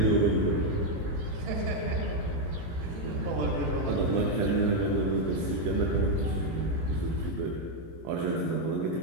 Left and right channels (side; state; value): left; late; 18 ms